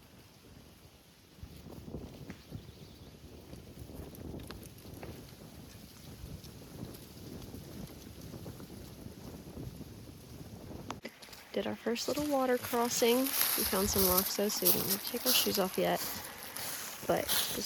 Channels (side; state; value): both; identical; correlation 1.00